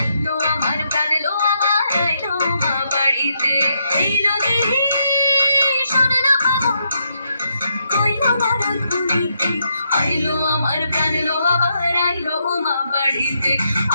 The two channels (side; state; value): both; inverted; correlation -0.79